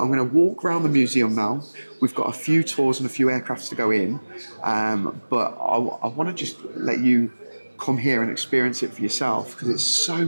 going to walk around the museum now. We've got a few tours and a few aircrafts to go in, but I want to just let you come here and experience it for yourself, because it's so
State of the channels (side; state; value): both; inverted; correlation -1.00